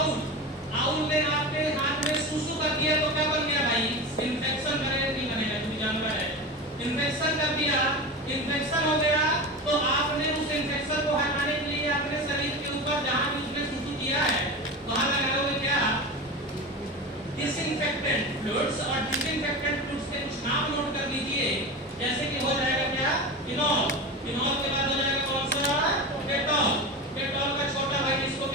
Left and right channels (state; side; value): normal; both; correlation 0.26